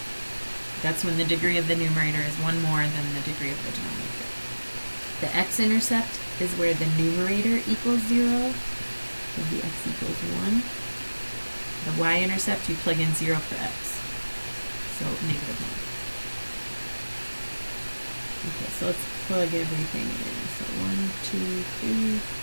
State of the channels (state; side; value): inverted; both; correlation -1.00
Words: That's when the degree of the numerator is 1 more than the degree of the denominator. The x-intercept is where the numerator equals 0. So the x equals 1. The y-intercept, you plug in 0 for x. So negative 1. Okay, so let's plug everything in. So 1, 2, 3, 1,